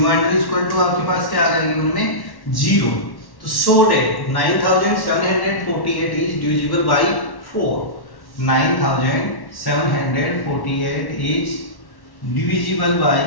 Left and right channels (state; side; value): late; right; 1.1 ms